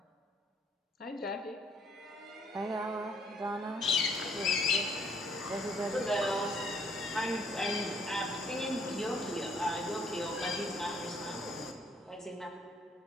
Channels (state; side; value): normal; both; correlation 0.64